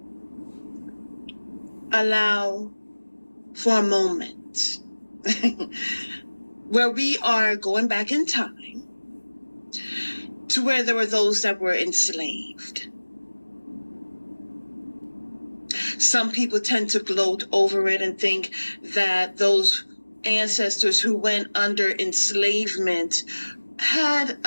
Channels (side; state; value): both; inverted; correlation -1.00